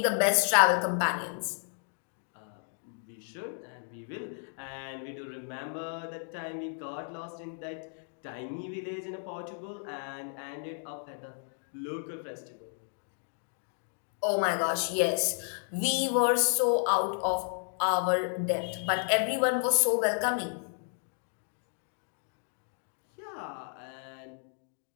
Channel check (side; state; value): right; silent; 56 dB below the other